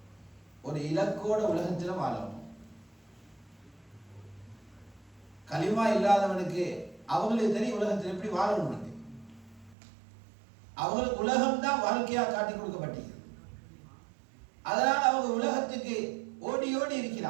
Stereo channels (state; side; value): drops out; left; at 9.8 s